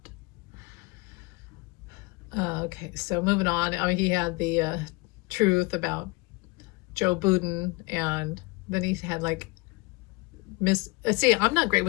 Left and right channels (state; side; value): quieter; right; 24.9 dB